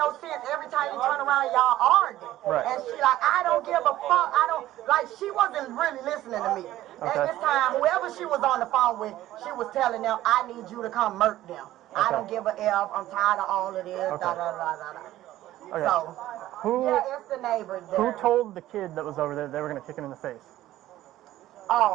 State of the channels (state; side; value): quieter; left; 14.5 dB